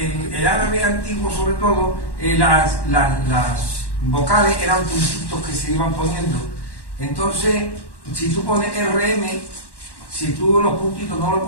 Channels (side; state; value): right; late; 1.1 ms